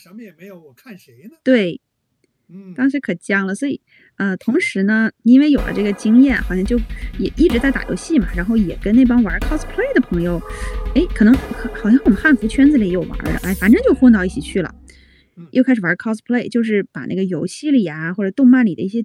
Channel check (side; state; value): both; identical; correlation 1.00